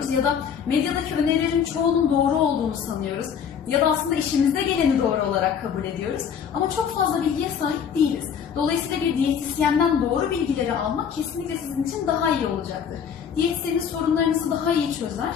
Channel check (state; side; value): quieter; right; 7.6 dB